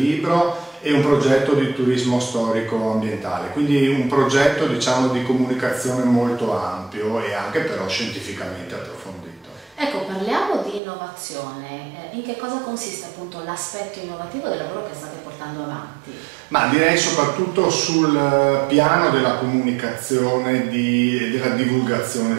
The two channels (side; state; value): left; drops out; at 10.8 s